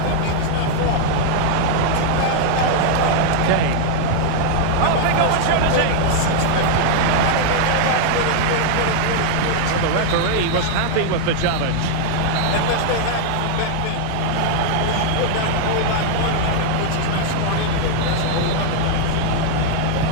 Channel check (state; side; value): different; both; correlation -0.01